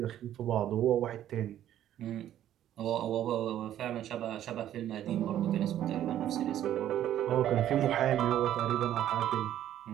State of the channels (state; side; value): quieter; left; 11.7 dB